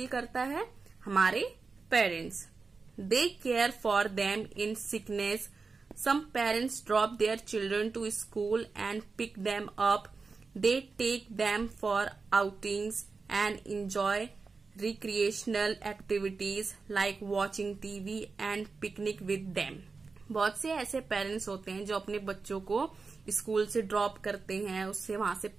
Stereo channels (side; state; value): left; quieter; 4.4 dB